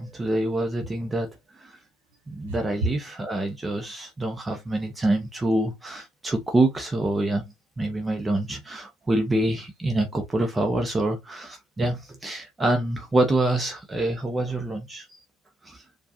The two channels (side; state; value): both; normal; correlation 0.84